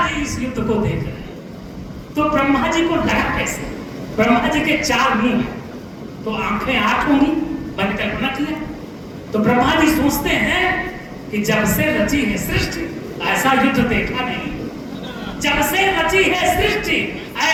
जी इस युद्ध को देख रहे हैं। तो ब्रह्मा जी को लगा कैसे, ब्रह्मा जी के 4 मुंह हैं, तो आंखें 8 होंगी, मैंने कल्पना किया। तो ब्रह्मा जी सोचते हैं कि जब से रची है सृष्टि ऐसा युद्ध देखा नहीं, जब से रची है सृष्टि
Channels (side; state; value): both; identical; correlation 1.00